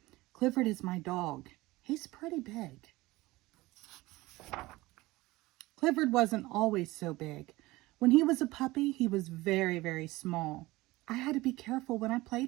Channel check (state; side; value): quieter; left; 19.8 dB